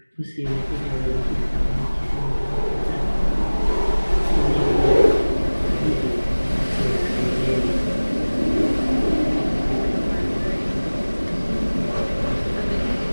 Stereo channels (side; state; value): both; inverted; correlation -1.00